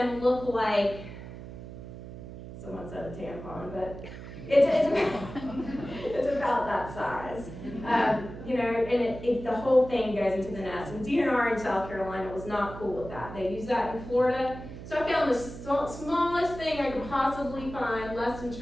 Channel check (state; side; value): noise; right; hum, 12 dB below the sound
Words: look like, someone said a tampon, but it's about that size. And the whole thing goes into the nest. And DNR in South Carolina was not cool with that. They use that in Florida. So I found the smallest thing I could possibly find, less